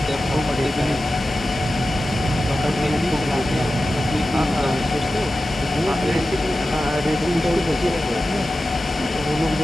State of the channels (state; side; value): normal; both; correlation 0.93